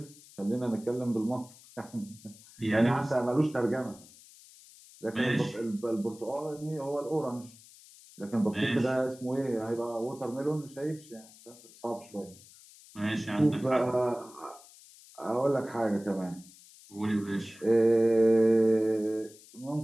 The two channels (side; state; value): left; noise; hiss, 22 dB below the sound